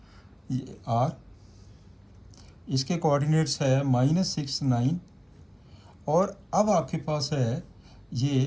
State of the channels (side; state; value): both; identical; correlation 1.00